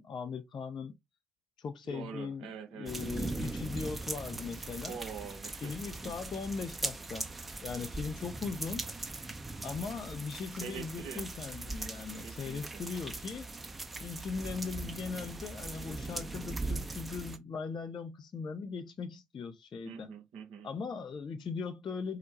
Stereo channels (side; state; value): both; normal; correlation 0.78